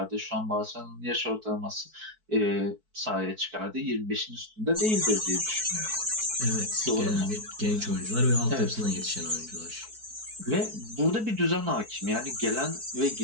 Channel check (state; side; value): late; left; 4.6 ms